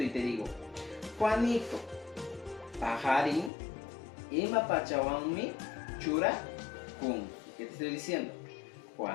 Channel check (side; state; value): right; drops out; at 3.5 s